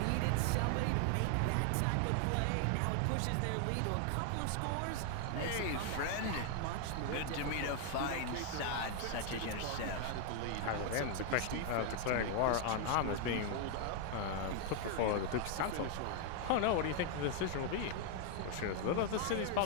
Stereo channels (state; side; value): different; both; correlation 0.00